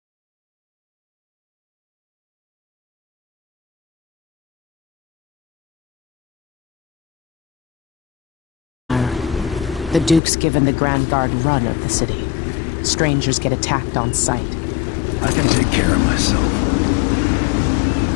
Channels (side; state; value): right; drops out; at 10.2 s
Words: The Duke's given the Grand Guard run of the city. Strangers get attacked on sight. I can take care of myself.